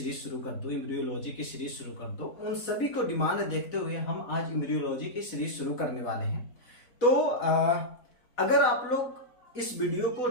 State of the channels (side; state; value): right; late; 4.1 ms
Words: शुरू कर दो, एम्ब्रियोलॉजी की सीरीज शुरू कर दो। उन सभी को डिमांड देखते हुए हम आज एम्ब्रियोलॉजी की सीरीज शुरू करने वाले हैं। तो अगर आप लोग इस वीडियो को